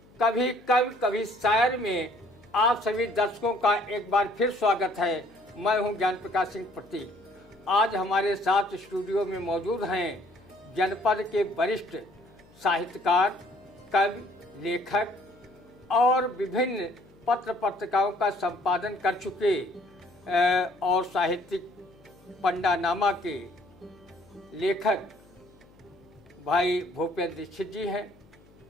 कभी कवि कभी शायर में आप सभी दर्शकों का एक बार फिर स्वागत है। मैं हूं ज्ञान प्रकाश सिंह प्रतीक। आज हमारे साथ स्टूडियो में मौजूद हैं जनपद के वरिष्ठ साहित्यकार, कवि, लेखक और विभिन्न पत्र पत्रिकाओं का संपादन कर चुके और साहित्यिक पंडानामा के लेखक भाई भूपेंद्र दीक्षित जी हैं।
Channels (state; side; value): noise; left; hum, 28 dB below the sound